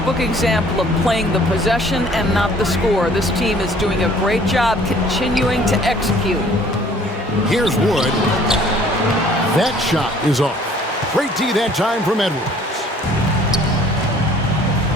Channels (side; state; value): both; normal; correlation 0.55